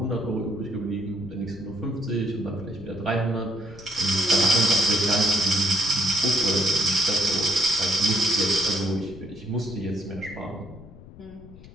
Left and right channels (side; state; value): left; noise; rumble, 18 dB below the sound